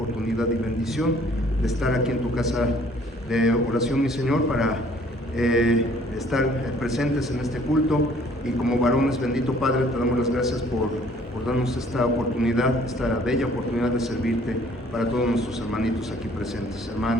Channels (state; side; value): normal; both; correlation 0.58